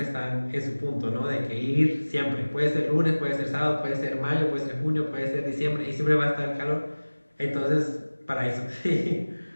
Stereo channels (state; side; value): inverted; both; correlation -1.00